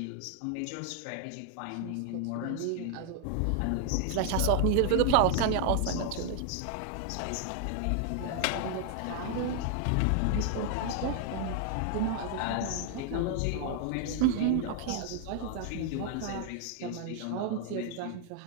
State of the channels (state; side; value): different; both; correlation 0.00